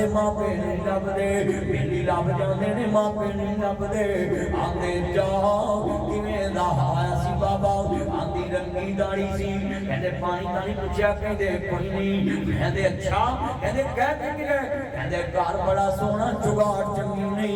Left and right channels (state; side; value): identical; both; correlation 1.00